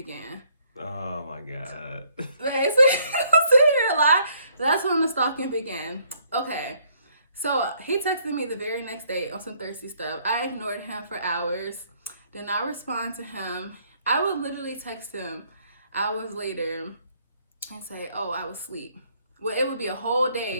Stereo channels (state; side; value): inverted; both; correlation -0.66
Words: Oh my God. That's when the stalking began. Okay, so he texted me the very next day on some thirsty stuff. I ignored him for hours, did not respond to him. I would literally text him hours later and say, oh, I was asleep. Well, it would be a whole